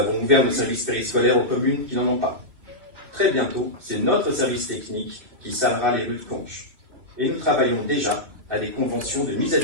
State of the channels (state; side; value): late; left; 2.6 ms